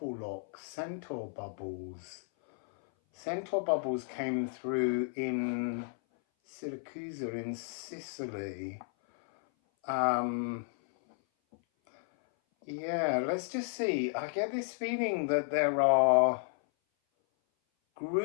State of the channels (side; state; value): right; silent; 56 dB below the other